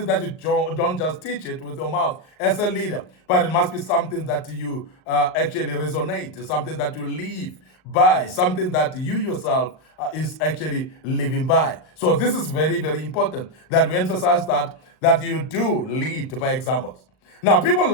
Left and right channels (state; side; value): late; right; 38 ms